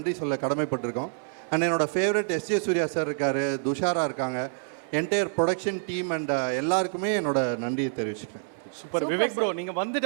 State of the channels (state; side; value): silent; left; 60 dB below the other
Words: சொல்ல கடமைப்பட்டிருக்கோம். அண்ட் என்னோடய ஃபேவரட் எஸ்ஜே சூர்யா சார் இருக்கார், துஷாரா இருக்காங்க, என்டையர் ப்ரொடக்ஷன் டீம் அண்ட் எல்லாருக்குமே என்னோட நன்றியை தெரிவிச்சுக்கிறேன். சூப்பர் விவேக் ப்ரோ, நீங்கள்